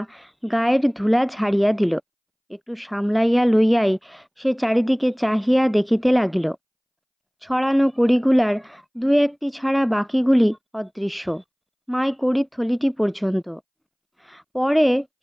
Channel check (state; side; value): identical; both; correlation 1.00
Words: গায়ের ধুলা ঝাড়িয়া দিল। একটু সামলাইয়া লইয়াই সে চারিদিকে চাহিয়া দেখিতে লাগিল। ছড়ানো কড়িগুলার দু একটি ছাড়া বাকিগুলি অদৃশ্য, মাই কড়ির থলিটি পর্যন্ত। পরে